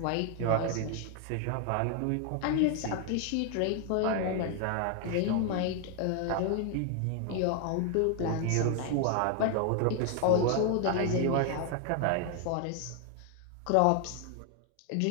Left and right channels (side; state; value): both; different; correlation 0.00